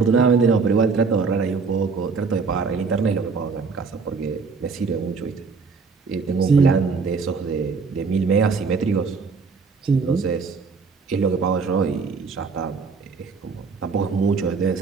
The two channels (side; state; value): left; quieter; 4.9 dB